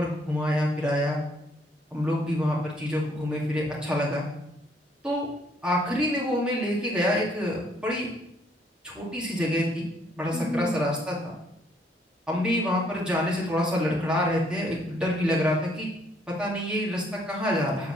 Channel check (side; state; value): both; normal; correlation 0.67